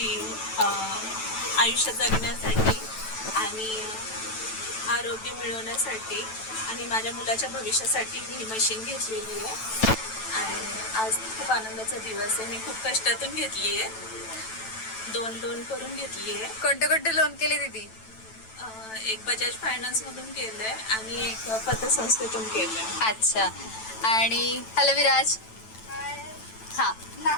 आयुष्य जगण्यासाठी आणि आरोग्य मिळवण्यासाठी आणि माझ्या मुलाच्या भविष्यासाठी मी ही मशीन घेतलेली आहे. आणि आज खूप आनंदाचा दिवस आहे. मी खूप कष्टातून घेतली आहे. दोन लोन करून घेतली आहे. कोणते कोणते लोन केले दीदी? एक बजाज फायनान्स मधून केलंय आणि एक पतसंस्थेतून केलंय. अच्छा. आणि हॅलो विराज. हा,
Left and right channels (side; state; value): right; late; 9.1 ms